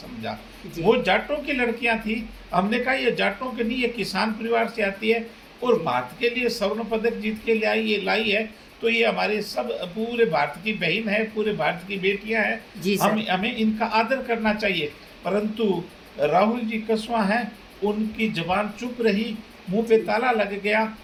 वो जाटों की लड़कियां थी। हमने कहा ये जाटों के नहीं, ये किसान परिवार से आती है और भारत के लिए स्वर्ण पदक जीत के लाई है, तो ये हमारे सब पूरे भारत की बहन है, पूरे भारत की बेटियां हैं। हमें इनका आदर करना चाहिए। परंतु राहुल जी कसवां हैं, उनकी जबान चुप रही, मुंह पे ताला लग गया।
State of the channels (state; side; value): identical; both; correlation 1.00